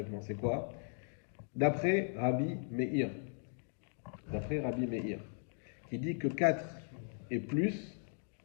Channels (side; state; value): right; silent; 53 dB below the other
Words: C'est quoi? D'après Rabbi Meir. D'après Rabbi Meir. Qui dit que 4 et plus,